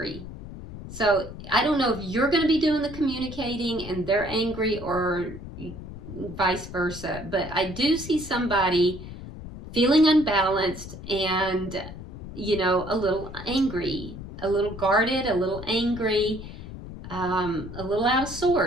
So I don't know if you're going to be doing the communicating and they're angry, or vice versa. But I do see somebody feeling unbalanced, and you know, a little angry, a little guarded, a little angry, a little out of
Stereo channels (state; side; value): noise; left; rumble, 12 dB below the sound